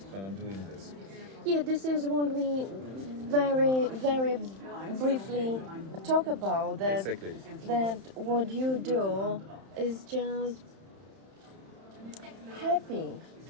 when I'm doing this. Yeah, this is what we very briefly talk about. That, Exactly. that what you do is just happy.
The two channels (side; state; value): left; late; 31 ms